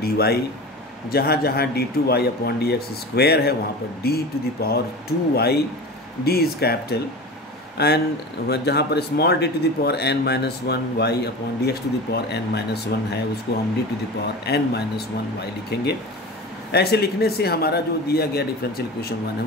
वाई, जहाँ जहाँ D two Y upon D X square है वहाँ पर D to the power 2 Y, D is capital, and जहाँ पर small D to the power n minus 1 Y upon D X to the power n minus 1 है, उसको हम D to the power n minus 1 Y लिखेंगे। ऐसे लिखने से हमारा जो दिया गया डिफरेंशियल इक्वेशन 1 है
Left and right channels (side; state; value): both; normal; correlation 0.32